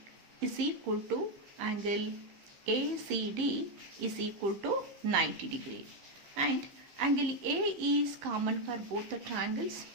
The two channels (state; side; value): late; left; 15 ms